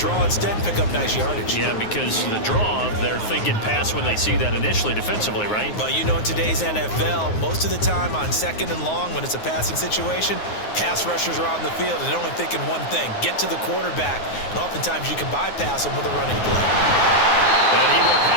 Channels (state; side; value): late; right; 9.5 ms